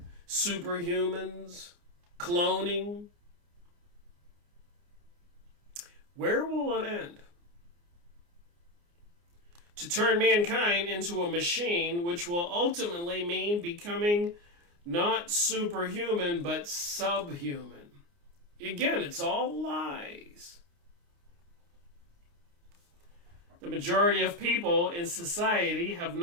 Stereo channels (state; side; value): late; left; 29 ms